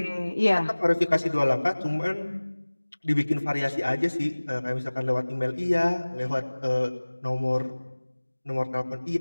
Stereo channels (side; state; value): both; inverted; correlation -1.00